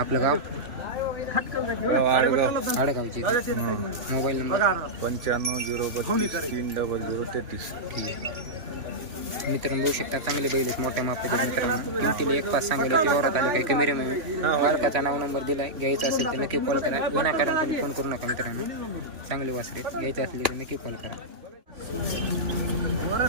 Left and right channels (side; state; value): left; late; 3.1 ms